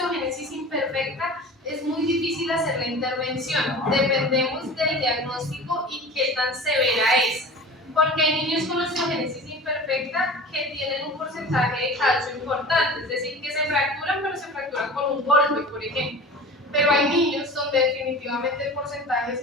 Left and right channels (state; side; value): normal; both; correlation 0.38